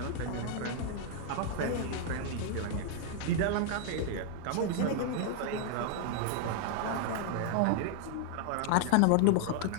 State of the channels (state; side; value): different; both; correlation 0.00